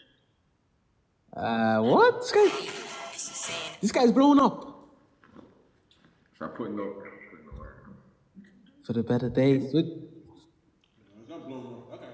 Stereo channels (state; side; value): identical; both; correlation 1.00